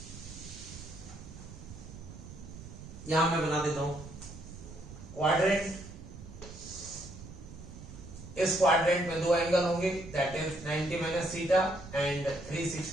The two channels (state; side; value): noise; right; rumble, 14 dB below the sound